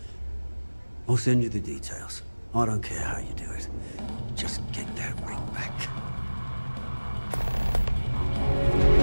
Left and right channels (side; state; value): both; inverted; correlation -1.00